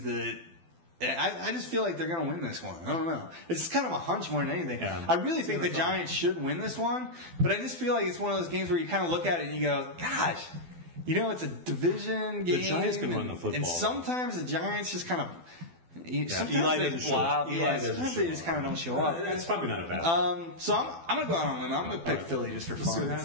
that I just feel like they're going to win this one. I don't know. It's just kind of a hunch more than anything. Yeah. I really think the Giants should win this one, but I just feel like it's one of those games where you kind of look at it and you go, gosh. You know, it's a division game. The Giants can run the football. And sometimes the Giants just kind of... Sometimes Eli they flop. Sometimes they just kind of don't show up. That's probably not a bad So I'm going to go out on a limb. I'm going to pick Philly just for fun.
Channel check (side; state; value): left; late; 12 ms